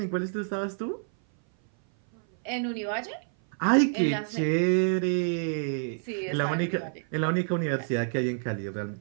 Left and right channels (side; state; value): left; silent; 57 dB below the other